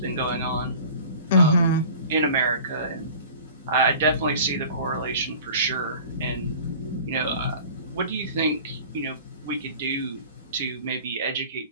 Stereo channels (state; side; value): inverted; both; correlation -0.42